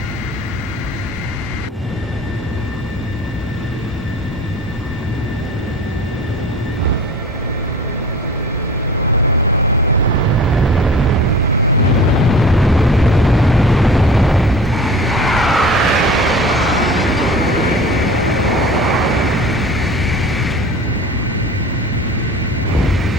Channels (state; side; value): normal; both; correlation 0.40